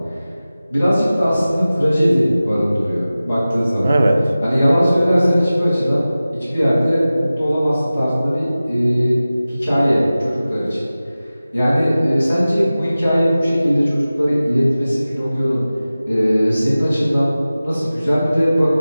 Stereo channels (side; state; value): both; inverted; correlation -0.96